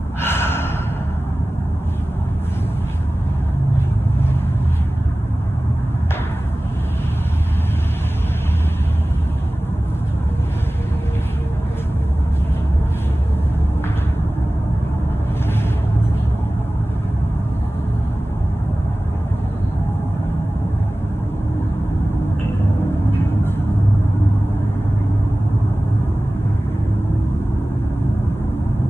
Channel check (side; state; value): both; normal; correlation 0.97